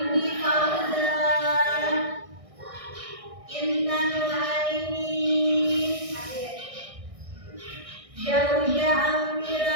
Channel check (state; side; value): late; left; 1.6 ms